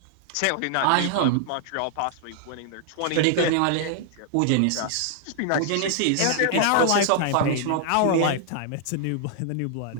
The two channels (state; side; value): different; both; correlation 0.00